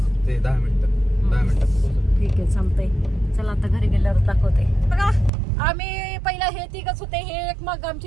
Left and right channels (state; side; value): drops out; left; at 5.3 s